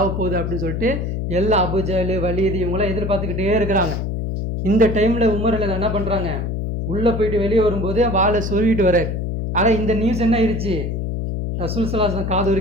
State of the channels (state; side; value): noise; left; hum, 2 dB below the sound